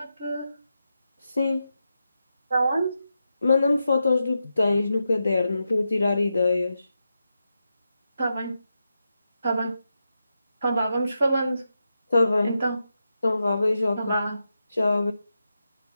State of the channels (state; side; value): inverted; both; correlation -0.88